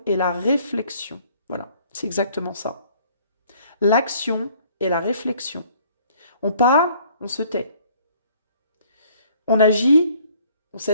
et la réflexion. Voilà, c'est exactement ça. L'action et la réflexion. On parle, on se tait. On agit, on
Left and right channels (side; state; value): both; inverted; correlation -0.59